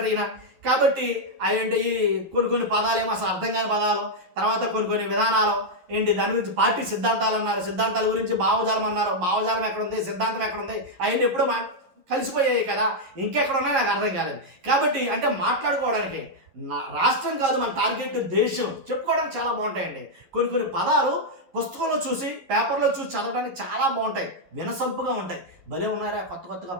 ఈయన. కాబట్టి అవేంటి ఈ కొన్ని పదాలు ఏమో అసలు అర్థం కాని పదాలు, తర్వాత కొన్ని విధానాలు ఏంటి, దాని గురించి పార్టీ సిద్ధాంతాలు అన్నారు, సిద్ధాంతాల గురించి భావజాలం అన్నారు, భావజాలం ఎక్కడుంది, సిద్ధాంతం ఎక్కడుంది, అవన్నీ ఎప్పుడూ కలిసిపోయాయి కదా, ఇంకెక్కడ ఉన్నాయి నాకు అర్థం కాలేదు. కాబట్టి అంటే మాట్లాడుకోవడానికి రాష్ట్రం కాదు మన టార్గెట్ దేశం, చెప్పుకోవడానికి చాలా బాగుంటాయండి. కొన్ని పదాలు పుస్తకంలో చూసి పేపర్లో చూసి చదవడానికి చాలా బాగుంటాయి, వినసంపుగా ఉంటాయి, భలే ఉన్నారా కొత్తగా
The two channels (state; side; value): late; left; 11 ms